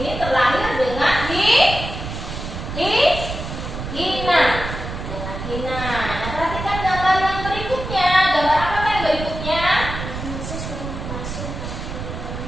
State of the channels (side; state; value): right; noise; rumble, 7 dB below the sound